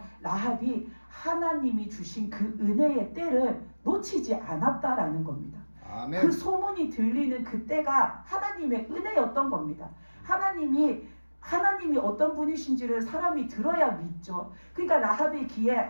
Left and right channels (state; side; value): inverted; both; correlation -1.00